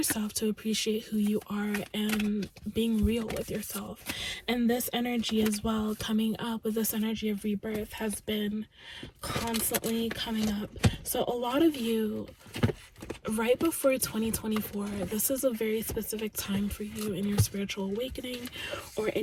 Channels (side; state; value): both; identical; correlation 1.00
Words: to appreciate who you are and being real with yourself. And this energy as well, coming up with this energy of rebirth, has been constantly coming up. So a lot of you, right before 2024, this is a very specific time for you in your spiritual awakening, or